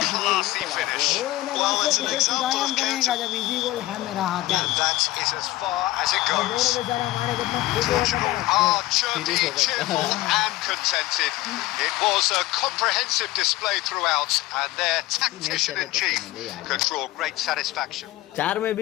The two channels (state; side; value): quieter; right; 17.6 dB